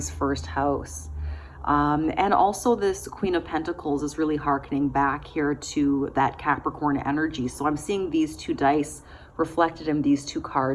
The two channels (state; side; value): identical; both; correlation 1.00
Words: first house. And also this Queen of Pentacles is really hearkening back here to that Capricorn energy. So I'm seeing these two dice reflected in these two